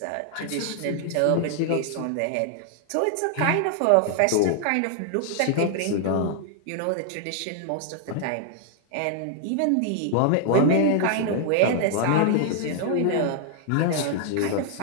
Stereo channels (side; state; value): both; different; correlation 0.00